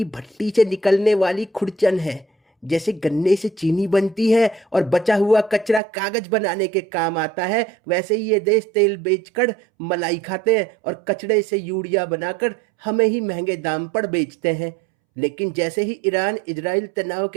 भट्टी से निकलने वाली खुरचन है। जैसे गन्ने से चीनी बनती है और बचा हुआ कचरा कागज बनाने के काम आता है, वैसे ही ये देश तेल बेचकर मलाई खाते हैं और कचरे से यूरिया बनाकर हमें ही महंगे दाम पर बेचते हैं। लेकिन जैसे ही ईरान इजराइल तनाव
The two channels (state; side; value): drops out; left; at 5.8 s